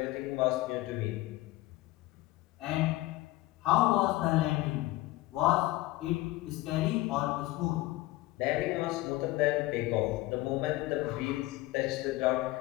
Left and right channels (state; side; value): quieter; right; 18.1 dB